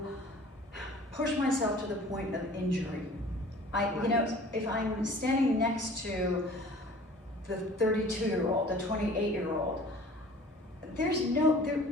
push myself to the point of injury. You know, if I'm standing next to the 32-year-old, the 28-year-old, there's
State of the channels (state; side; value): normal; both; correlation 0.47